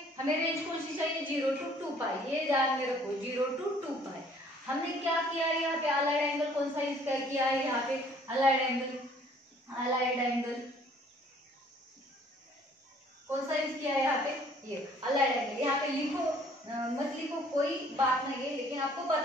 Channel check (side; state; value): both; normal; correlation 0.58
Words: हमें रेंज कौन सी चाहिए 0 to 2 पाई। ये ध्यान में रखो 0 to 2 पाई। हमने क्या किया है यहाँ पे अलाइड एंगल कौन सा यूज किया है, यहाँ पे अलाइड एंगल कौन सा यूज किया है यहाँ पे, ये अलाइड एंगल। यहाँ पे लिखो मत लिखो कोई बात नहीं है, लेकिन आपको